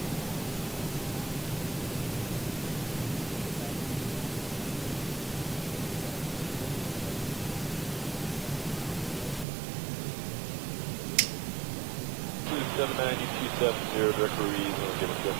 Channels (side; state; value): left; drops out; at 9.5 s